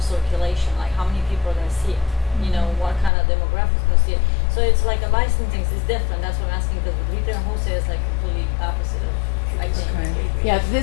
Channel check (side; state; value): right; drops out; at 3.1 s